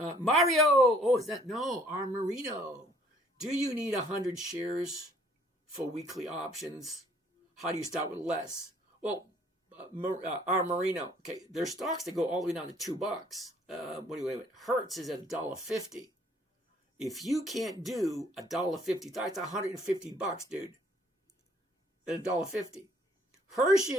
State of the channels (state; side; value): normal; both; correlation 0.61